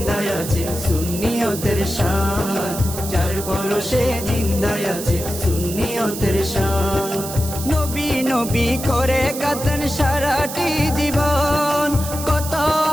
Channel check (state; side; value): noise; right; hiss, 9 dB below the sound